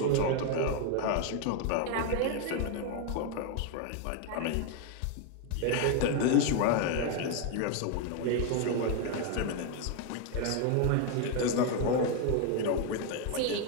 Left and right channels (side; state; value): both; different; correlation 0.01